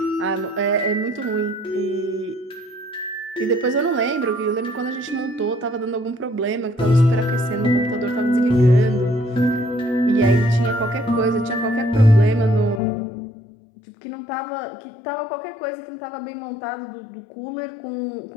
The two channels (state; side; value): drops out; right; at 12.8 s